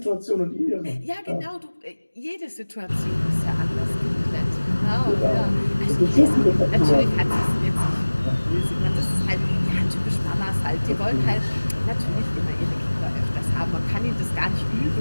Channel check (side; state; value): both; inverted; correlation -1.00